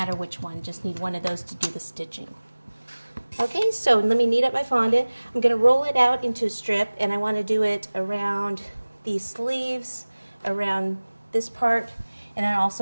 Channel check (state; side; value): inverted; both; correlation -1.00